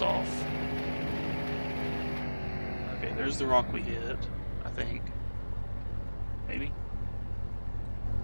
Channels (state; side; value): inverted; both; correlation -1.00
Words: off. Okay, there's the rock we hit, I think. Maybe?